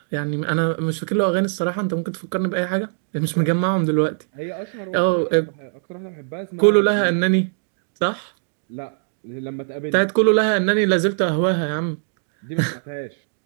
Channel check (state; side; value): silent; left; digital silence